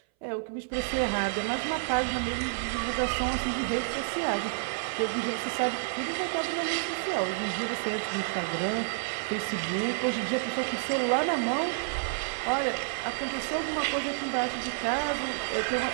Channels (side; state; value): left; silent; 58 dB below the other